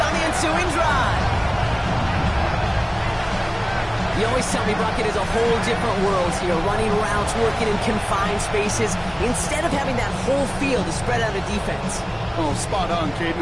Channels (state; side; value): identical; both; correlation 1.00